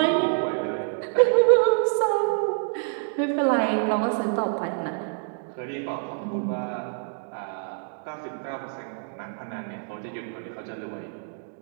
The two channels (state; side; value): silent; left; digital silence